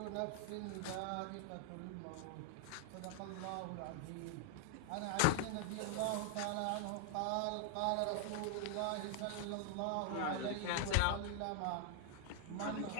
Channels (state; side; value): different; both; correlation 0.00